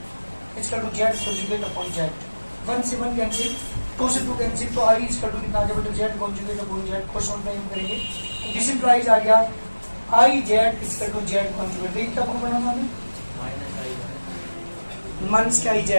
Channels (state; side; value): inverted; both; correlation -1.00